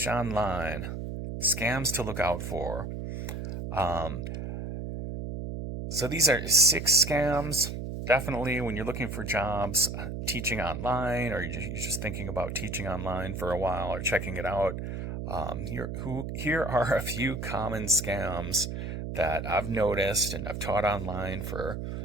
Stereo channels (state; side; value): noise; right; hum, 5 dB below the sound